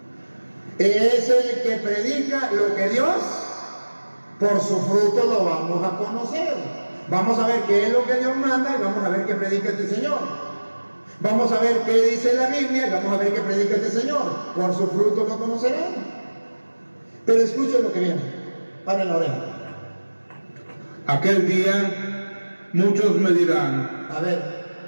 es el que predica lo que Dios, por su fruto lo vamos a conocer. Vamos a ver qué es lo que Dios manda y vamos a ver qué predica este Señor. Vamos a ver qué dice la Biblia y vamos a ver qué predica este Señor. Por su fruto lo conocerán. Pero escuchen lo que viene. Paren la oreja. Aquel día muchos me dirán, A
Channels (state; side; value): inverted; both; correlation -1.00